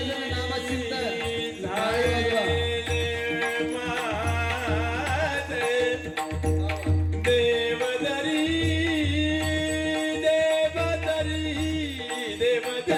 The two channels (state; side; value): identical; both; correlation 1.00